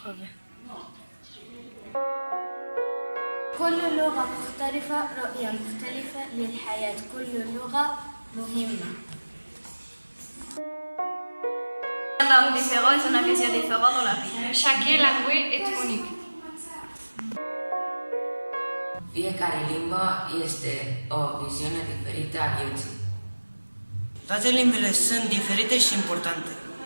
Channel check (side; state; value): both; inverted; correlation -1.00